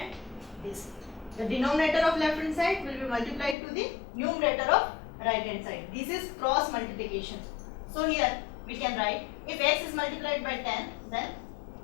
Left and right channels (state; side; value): drops out; right; at 3.6 s